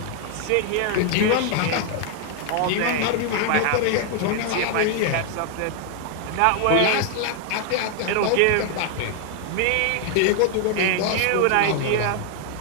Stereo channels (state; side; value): different; both; correlation 0.00